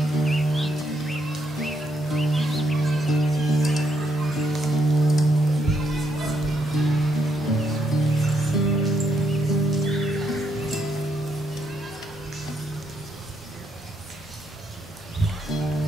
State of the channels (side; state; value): both; normal; correlation 0.76